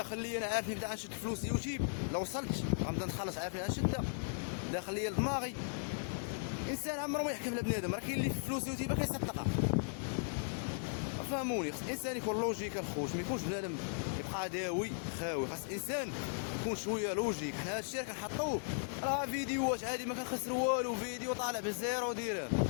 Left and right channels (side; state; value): right; silent; digital silence